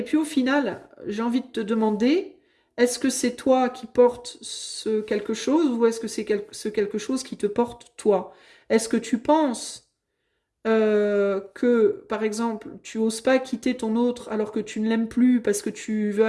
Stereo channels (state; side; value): identical; both; correlation 1.00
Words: puis au final, j'ai envie de te demander, est-ce que c'est toi qui portes ce quelque chose ou est-ce que c'est ce quelque chose qui te porte toi? Est-ce que tu penses que, par exemple, tu oses pas quitter ton autre alors que tu ne l'aimes plus parce que tu veux